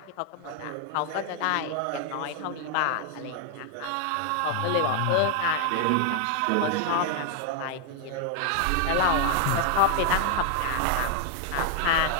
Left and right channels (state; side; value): different; both; correlation 0.00